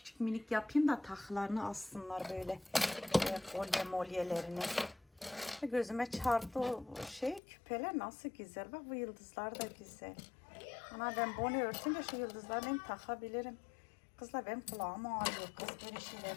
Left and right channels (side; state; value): right; drops out; at 7.4 s